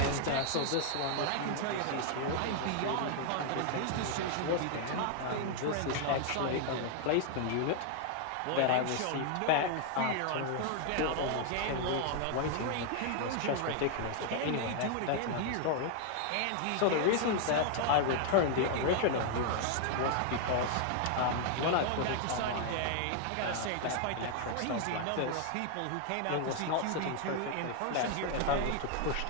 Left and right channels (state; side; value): different; both; correlation 0.00